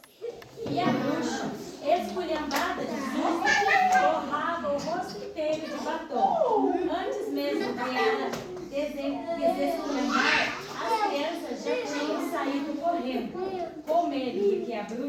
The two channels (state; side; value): identical; both; correlation 1.00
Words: E a bruxa, esculhambada de susto, borrava o rosto inteiro de batom. Antes mesmo de ela desesculhambar, as crianças já tinham saído correndo, com medo de que a